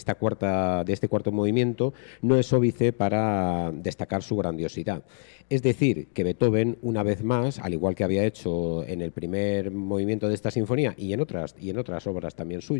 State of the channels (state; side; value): silent; right; digital silence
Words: cuarto movimiento no es óbice para destacar su grandiosidad. Es decir, que Beethoven, una vez más, al igual que había hecho en el primer movimiento de esta sinfonía y en otras obras también